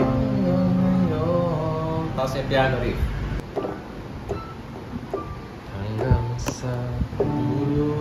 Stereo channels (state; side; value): identical; both; correlation 1.00